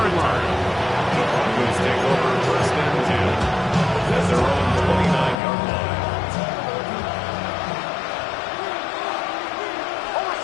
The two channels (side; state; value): right; drops out; at 5.4 s